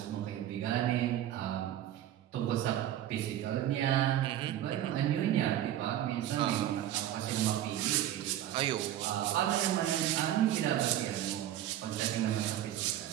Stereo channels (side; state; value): left; quieter; 12.2 dB